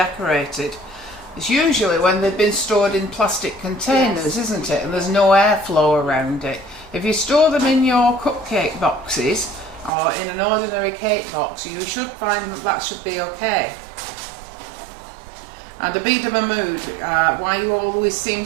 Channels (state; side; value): drops out; left; at 9.9 s